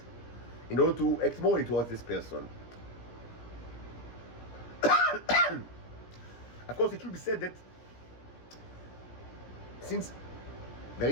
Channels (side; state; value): right; late; 17 ms